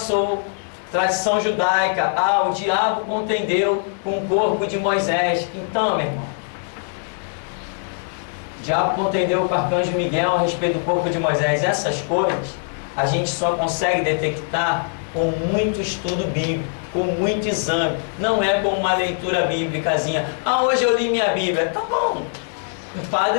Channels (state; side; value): silent; right; 62 dB below the other